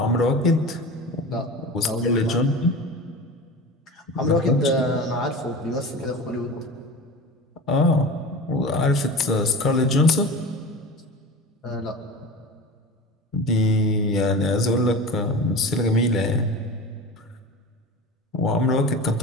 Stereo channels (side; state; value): both; normal; correlation 0.32